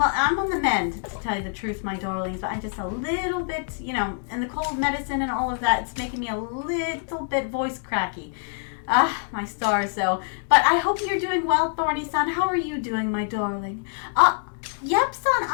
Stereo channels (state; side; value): silent; right; 62 dB below the other